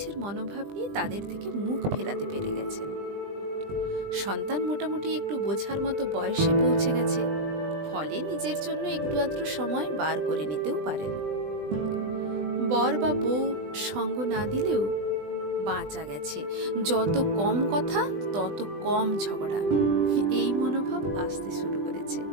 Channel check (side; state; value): left; late; 20 ms